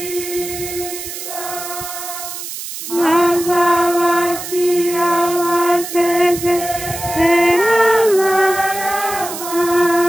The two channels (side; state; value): right; noise; hiss, 9 dB below the sound